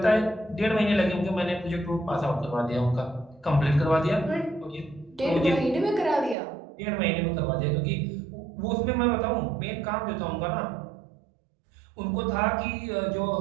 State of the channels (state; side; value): drops out; left; at 6.4 s